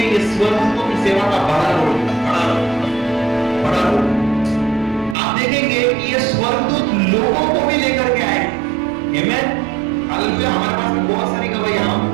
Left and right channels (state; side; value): drops out; left; at 5.2 s